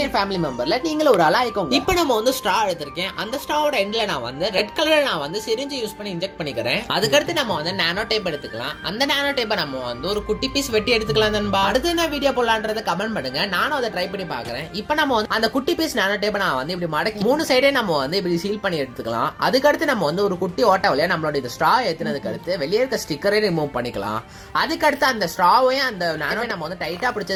ஃபேமிலி மெம்பர்ல நீங்களும் ஒரு ஆளா ஆயிக்கோங்க. இப்போ நம்ம வந்து ஸ்ட்ரா எடுத்திருக்கேன். அந்த ஸ்ட்ராவோட எண்ட்ல நான் வந்து ரெட் கலர்ல நான் வந்து சிரிஞ்சு யூஸ் பண்ணி இன்ஜெக்ட் பண்ணிக்கிறேன். அதுக்கடுத்து நம்ம வந்து நானோ டேப் எடுத்துக்கலாம். அந்த நானோ டேப்பை நம்ம வந்து ஒரு குட்டி பீஸ் வெட்டி எடுத்துக்கலாம். நண்பா, அடுத்து என்ன வீடியோ போடலான்றத கமெண்ட் பண்ணுங்க, நானும் அதை ட்ரை பண்ணி பாக்குறேன். இப்போ நம்ம வந்து அந்த குட்டி பீஸ் நானோ டேப்பை நான் வந்து இப்படி மடக்கி 3 சைடே நம்ம வந்து இப்படி சீல் பண்ணி எடுத்துக்கலாம். அதுக்கடுத்து நம்ம வந்து ஒரு குட்டி ஓட்ட வழியா நம்மளோட இந்த ஸ்ட்ரா ஏத்தினதுக்கு அடுத்து வெளியே இருக்க ஸ்டிக்கரை ரிமூவ் பண்ணிக்கலாம். அதுக்கடுத்து அந்த ஸ்ட்ராவையும் அந்த நானோவை நம்ம வந்து டைட்டா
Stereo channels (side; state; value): both; identical; correlation 1.00